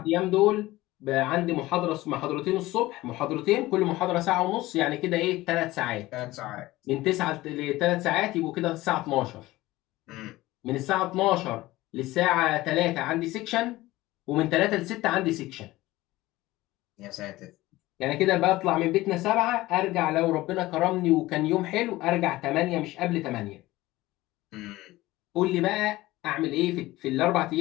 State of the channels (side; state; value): right; quieter; 18.1 dB